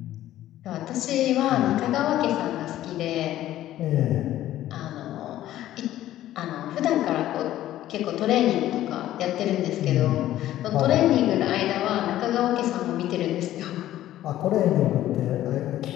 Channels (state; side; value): quieter; right; 13.5 dB